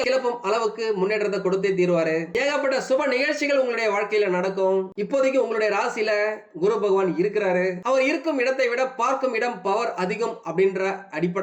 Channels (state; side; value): identical; both; correlation 1.00